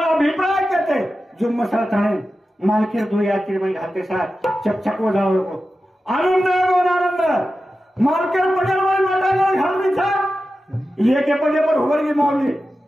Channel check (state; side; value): normal; both; correlation 0.92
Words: अभिप्राय कहते जो मसाला थाने मालके दो या कि मैं घाते साथ चकचक हो जाओ को आनंद मालके पडल वाली माता घालनी था ये के पजे पर होवर की मौली